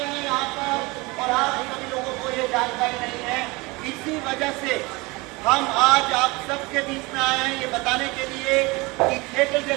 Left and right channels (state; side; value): quieter; left; 24.5 dB